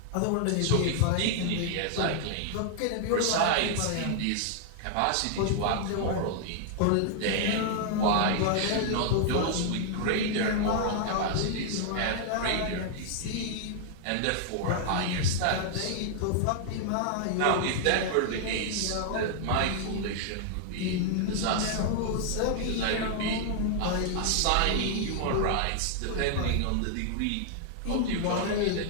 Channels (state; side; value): different; both; correlation -0.01